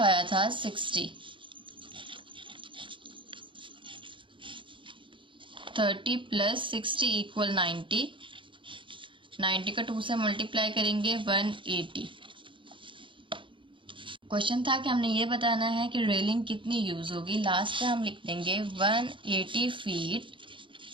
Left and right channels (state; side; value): late; left; 0.24 ms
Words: था 60। 30 प्लस 60 इक्वल 90। 90 का 2 से मल्टीप्लाई करेंगे 180। क्वेश्चन था कि हमने ये बताना है कि रेलिंग कितनी यूज़ होगी। लास्ट में हम लिख देंगे 180 feet